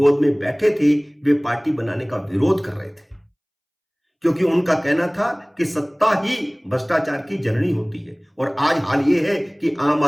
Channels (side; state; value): both; identical; correlation 1.00